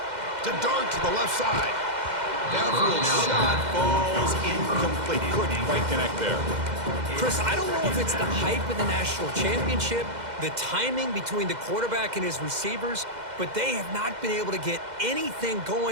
To Dart to the left side. Downfield shot falls incomplete. Couldn't quite connect there. Chris, I don't know if it's the hype of the national championship, the timing between the quarterback and his receivers, but they have not been able to get anything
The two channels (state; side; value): late; left; 2.1 ms